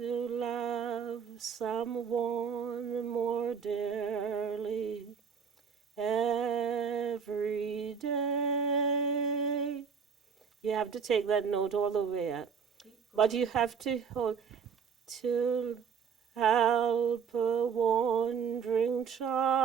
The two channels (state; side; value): quieter; left; 6.5 dB